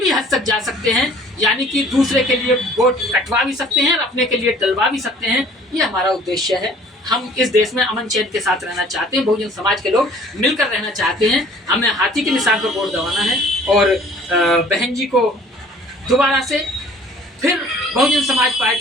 हद तक जा सकते हैं, यानी कि दूसरे के लिए वोट कटवा भी सकते हैं और अपने के लिए डलवा भी सकते हैं। ये हमारा उद्देश्य है। हम इस देश में अमन चैन के साथ रहना चाहते हैं, बहुजन समाज के लोग मिलकर रहना चाहते हैं। हमें हाथी के निशान पर वोट दबाना है और बहन जी को दोबारा से फिर बहुजन समाज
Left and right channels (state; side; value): normal; both; correlation 0.52